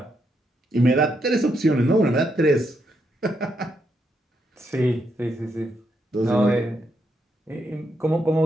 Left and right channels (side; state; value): both; normal; correlation 0.79